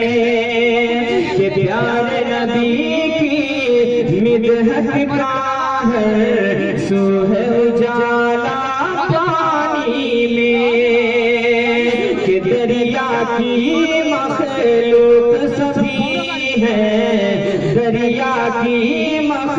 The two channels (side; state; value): both; identical; correlation 1.00